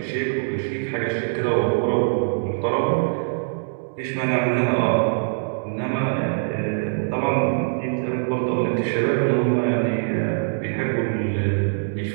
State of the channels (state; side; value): silent; left; digital silence